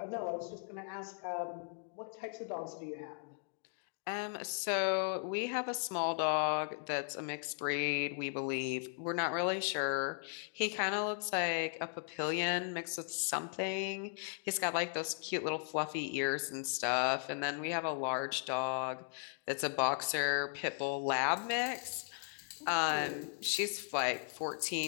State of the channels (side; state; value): right; silent; 53 dB below the other